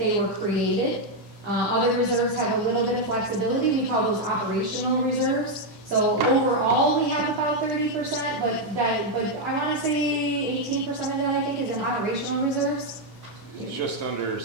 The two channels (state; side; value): normal; both; correlation 0.01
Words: were created. Other reserves have a little bit of flexibility. We call those operational reserves. So overall, we have about 30%, but I want to say 18% of that, I think, is in operational reserves. It's just under